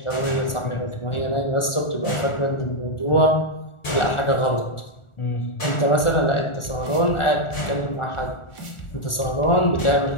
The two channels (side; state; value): right; late; 1.4 ms